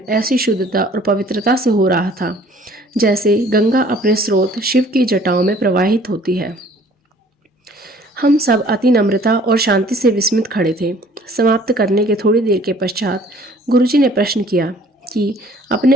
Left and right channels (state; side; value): normal; both; correlation 0.54